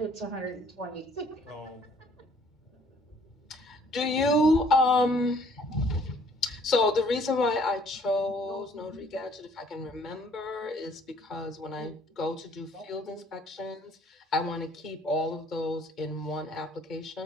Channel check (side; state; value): both; normal; correlation 0.60